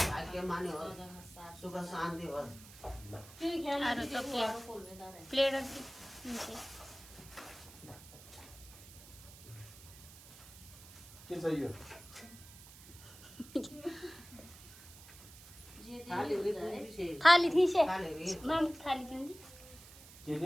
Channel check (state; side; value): noise; right; hiss, 18 dB below the sound